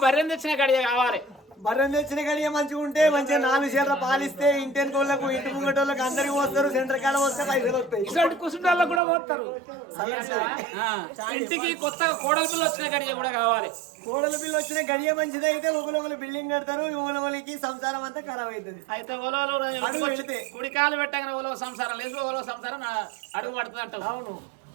బర్రెని తెచ్చిన గడియ కావాలి బర్రెని తెచ్చిన గడియ మంచిగా ఉంటే మంచిగా 4 చీరలు పాలిస్తే ఇంటెనుకోళ్ళకు ఇంటి ముంగటోళ్ళకి అందరికి పోస్తారు సెంటర్ కాడ వస్తే పైసలు వస్తాయి కుసుండాలకు కూడా పోతారు ఇంటికి కొత్తగా కోడల పిల్ల వచ్చిన గడియ కూడా కావాలి కోడల పిల్ల వచ్చిన గడియ మంచిది అయితే ఒకరు బిల్డింగ్ కడతారు ఒకరికి సంసారం అంతా ఖరాబ్ అవుతుంది అయితే ఓలో కుడికాలు పెట్టగానే ఓలో సంసారం లేదు ఓలో సంసారం అడుగు పడుతుంది అంటావు అవును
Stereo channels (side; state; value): left; drops out; at 9.0 s